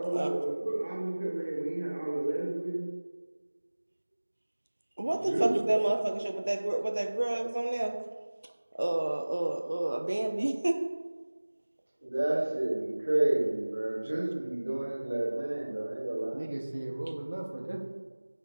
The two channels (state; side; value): inverted; both; correlation -1.00